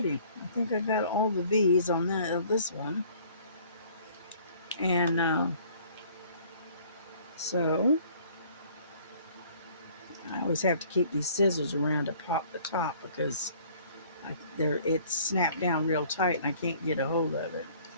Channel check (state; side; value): inverted; both; correlation -0.55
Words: I think I got all the V's on this one. And so I always have to keep these scissors around to pop the top because it's snapped down real tight and I can't get a hold of it.